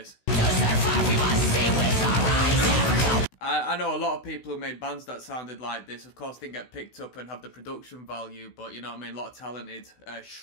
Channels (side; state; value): right; late; 16 ms